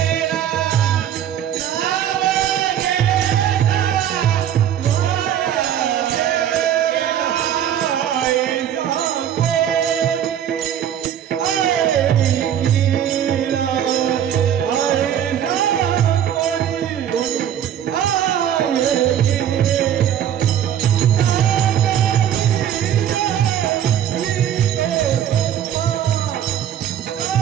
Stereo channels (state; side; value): quieter; left; 10.0 dB